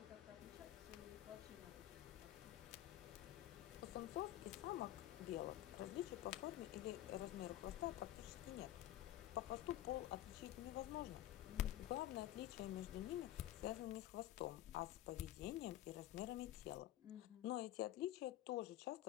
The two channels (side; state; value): right; quieter; 13.6 dB